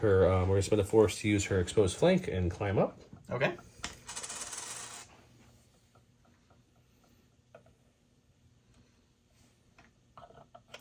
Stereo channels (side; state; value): both; identical; correlation 1.00